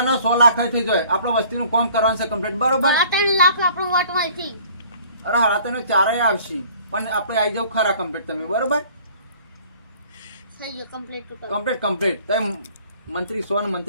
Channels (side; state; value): both; inverted; correlation -0.53